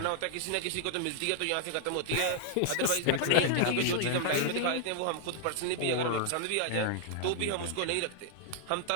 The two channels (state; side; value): different; both; correlation 0.00